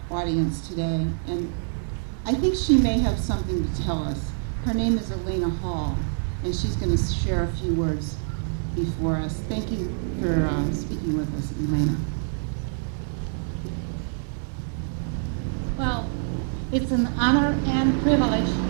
audience today, and I think she may have something to tell us. Her name is Elena Hall, and she's going to share a few words before us. Thank you for speaking with us, Elena. Well, it's an honor and privilege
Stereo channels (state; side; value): silent; left; digital silence